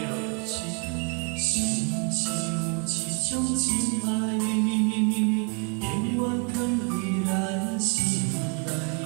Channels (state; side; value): quieter; left; 36.7 dB